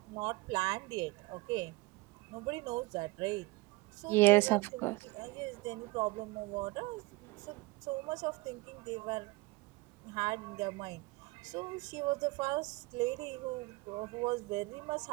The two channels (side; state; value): left; quieter; 22.5 dB